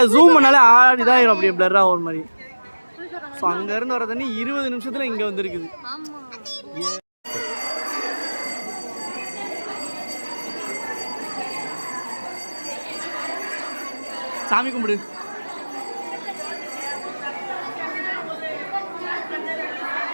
ஜூம் பண்ணாலே இதாகிடும், அப்படியே பிளர்ராக ஒரு மாதிரி. ஸோ அங்கேருந்து வர தண்ணி 20 நிமிஷத்தில் இங்கே வந்துருக்குது. சாமி கும்பிடு.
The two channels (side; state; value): both; inverted; correlation -1.00